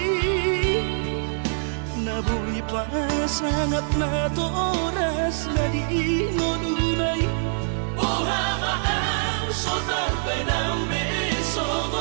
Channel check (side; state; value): left; silent; 62 dB below the other